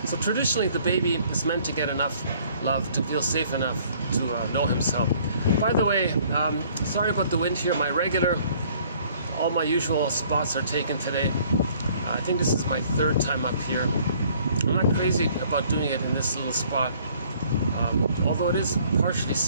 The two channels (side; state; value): both; inverted; correlation -0.59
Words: So traditionally, the baby is meant to get enough love to feel safe enough to know himself. By the way, sorry about the wind here. All my usual spots are taken today. I think this is my third time up here. I'm not crazy about doing it in this little spot, although it is partially